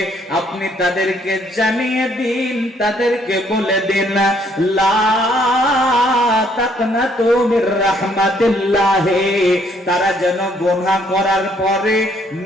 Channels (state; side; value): normal; both; correlation 0.67